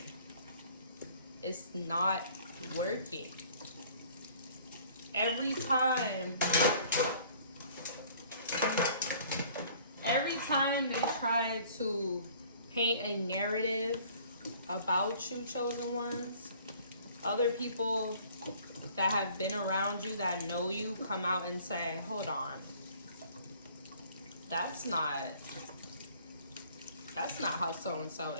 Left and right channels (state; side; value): inverted; both; correlation -0.54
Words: It's not working. Every time they try to paint a narrative about you, chosen ones, other people that have been around you, that know you, come out and say, hold on, that's not how so-and-so